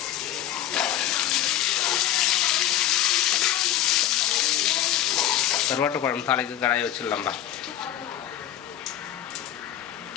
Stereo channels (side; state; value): right; quieter; 12.0 dB